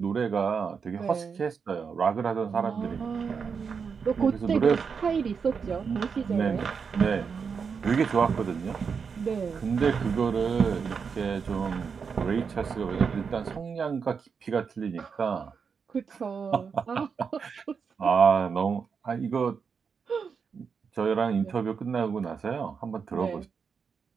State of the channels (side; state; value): left; quieter; 6.0 dB